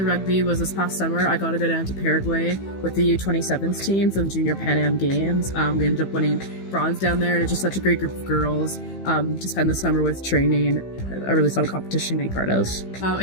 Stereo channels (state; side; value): late; right; 15 ms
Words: rugby was this past summer. I got to go down to Paraguay with the U27s team for the Junior Pan Am Games. We ended up winning bronze down there, and it's just such a great group of girls to spend the summer with training. A really fun competition to be part of. A